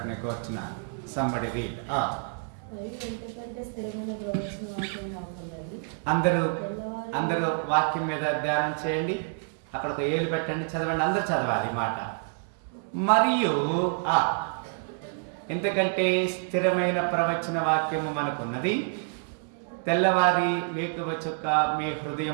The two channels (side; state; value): left; silent; 59 dB below the other